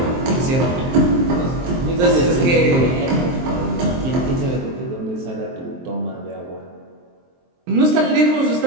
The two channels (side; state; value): left; late; 23 ms